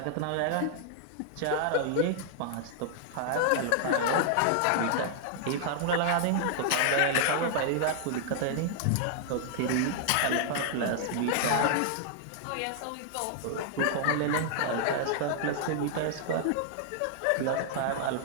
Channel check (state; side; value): different; both; correlation -0.01